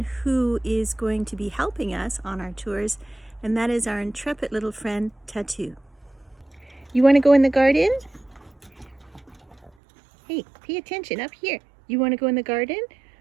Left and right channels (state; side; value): drops out; left; at 9.7 s